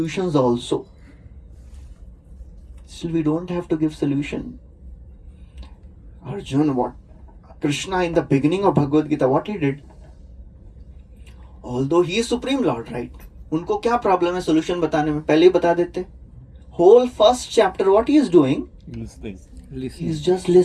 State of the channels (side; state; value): both; identical; correlation 1.00